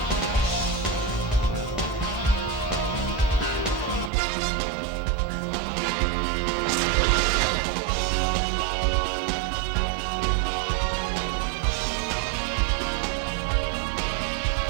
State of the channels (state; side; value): drops out; left; at 4.1 s